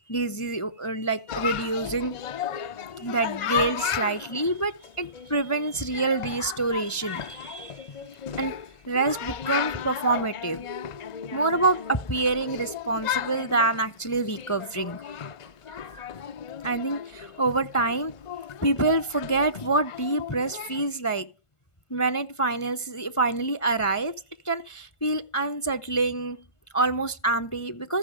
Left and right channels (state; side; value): late; right; 1.5 ms